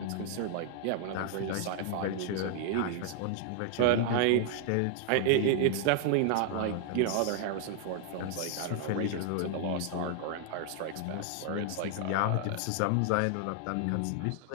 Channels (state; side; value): different; both; correlation 0.00